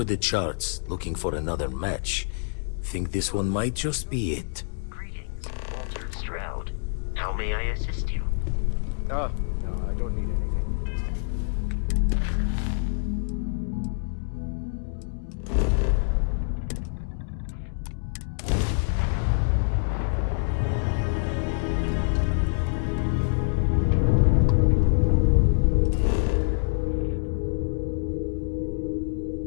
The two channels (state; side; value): silent; right; digital silence